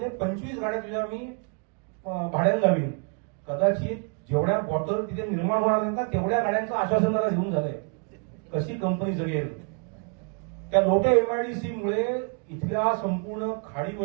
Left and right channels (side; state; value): left; quieter; 36.4 dB